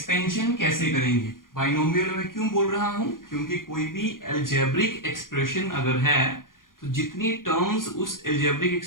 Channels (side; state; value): right; late; 0.90 ms